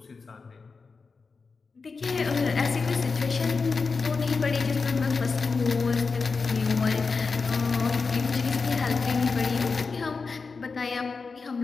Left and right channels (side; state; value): right; quieter; 4.6 dB